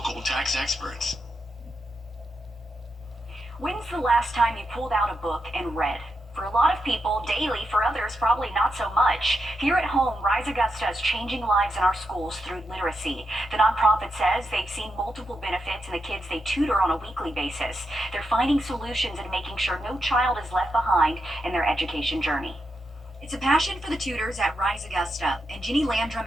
tax experts. When's the last time you pulled out a book and read? For a lot of people, daily. For others, probably not so much. Here at home, Rise Augusta is changing lives in our schools through literacy. The nonprofit says they've seen multiple benefits in the kids they tutor on a weekly basis. They're finding solutions and making sure no child is left behind in their education journey. It's a passion for the tutors at Rise Augusta, and Jenny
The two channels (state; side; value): normal; both; correlation 0.85